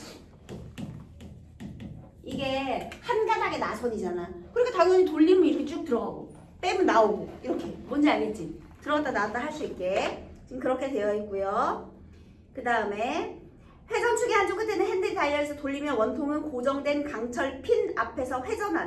이게 한 가닥의 나선이잖아. 그러니까 당연히 돌리면 이렇게 쭉 들어가고 빼면 나오고 이렇게. 뭔지 알겠지? 들어갔다 나왔다 할 수 있게 지금 그렇게 되어 있고요. 그 다음에 회전축의 한쪽 끝에는 핸들이 달려있어 돌리면 원통은 고정된 강철 핀 앞에서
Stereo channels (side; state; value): both; identical; correlation 1.00